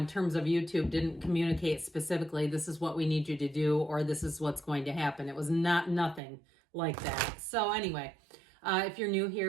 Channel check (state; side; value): drops out; left; at 6.2 s